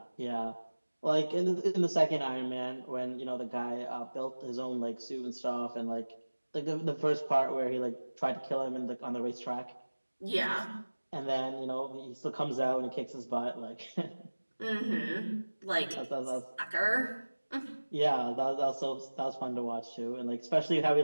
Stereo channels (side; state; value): both; inverted; correlation -1.00